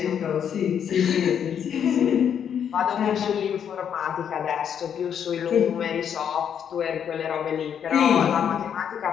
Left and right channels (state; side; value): quieter; right; 8.4 dB